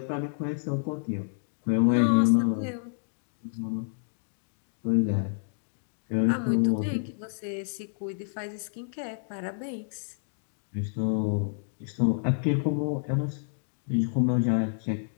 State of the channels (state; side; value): silent; right; digital silence